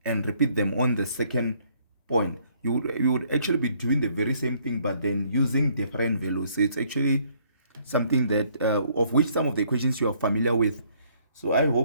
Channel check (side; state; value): both; inverted; correlation -0.65